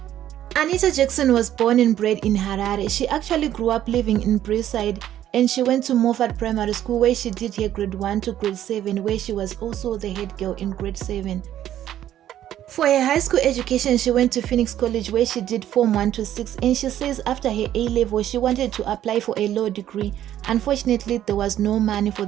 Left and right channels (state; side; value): quieter; left; 11.8 dB